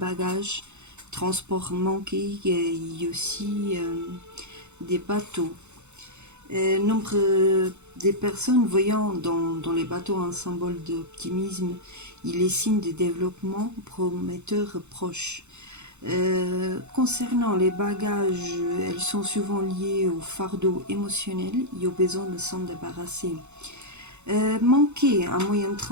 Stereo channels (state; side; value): late; left; 0.82 ms